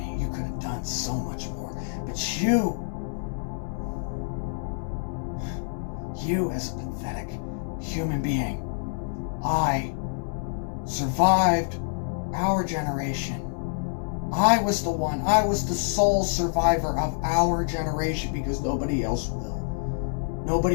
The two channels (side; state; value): right; silent; digital silence